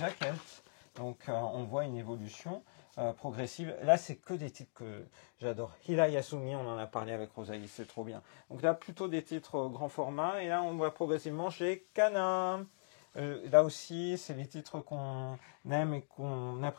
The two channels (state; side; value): silent; right; digital silence